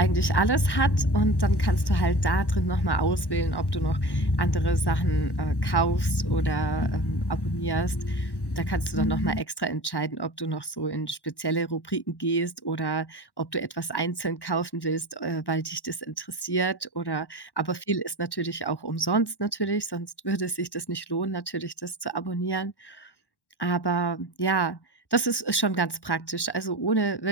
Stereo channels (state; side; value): late; right; 1.1 ms